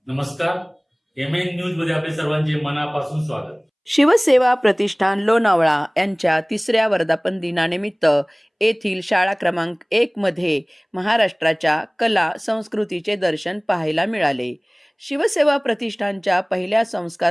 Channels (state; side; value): identical; both; correlation 1.00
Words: नमस्कार. MN news मध्ये आपले सर्वांचे मनापासून स्वागत. शिवसेवा प्रतिष्ठान लोणावळा यांच्या 3ऱ्या वर्धापन दिनानिमित्त येथील शाळा क्रमांक 1 मध्ये महाराष्ट्राच्या कला संस्कृतीचे दर्शन पाहायला मिळाले. शिवसेवा प्रतिष्ठानच्या पहिल्या